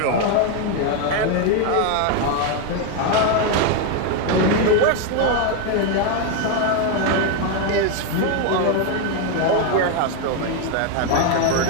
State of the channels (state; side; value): different; both; correlation 0.01